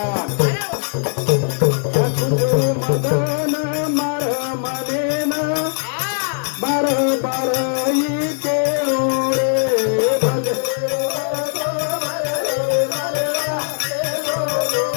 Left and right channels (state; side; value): silent; right; digital silence